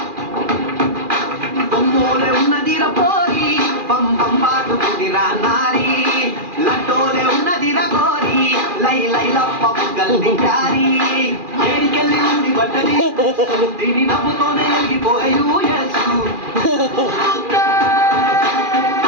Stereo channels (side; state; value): left; late; 2.4 ms